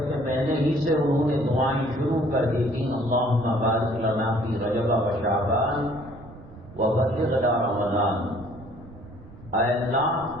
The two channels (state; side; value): noise; right; rumble, 19 dB below the sound